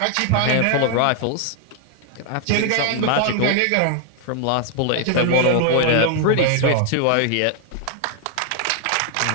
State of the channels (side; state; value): both; different; correlation 0.00